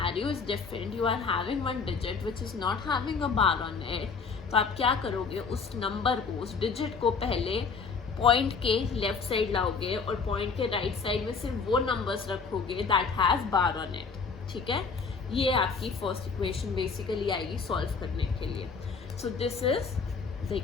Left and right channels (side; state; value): right; quieter; 5.2 dB